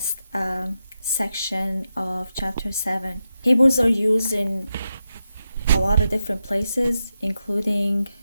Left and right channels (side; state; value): both; inverted; correlation -0.88